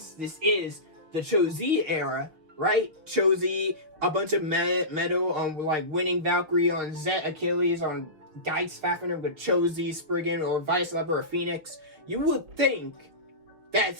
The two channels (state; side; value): late; left; 6.1 ms